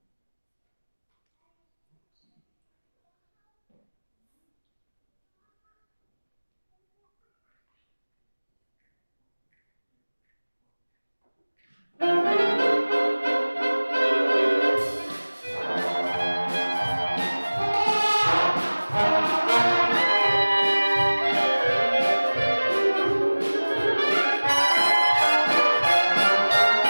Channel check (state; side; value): inverted; both; correlation -1.00